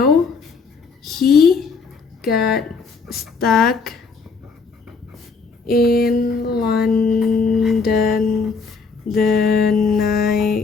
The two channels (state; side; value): quieter; right; 4.8 dB